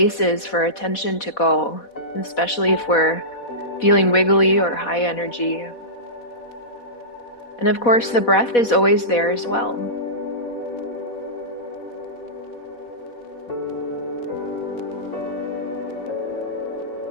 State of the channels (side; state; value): right; late; 4.1 ms